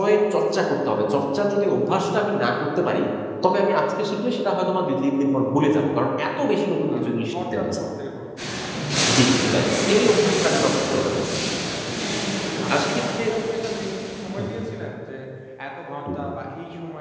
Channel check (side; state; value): both; identical; correlation 1.00